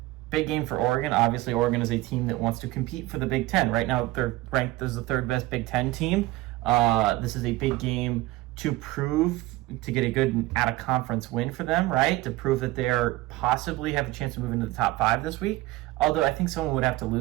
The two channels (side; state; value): left; quieter; 18.6 dB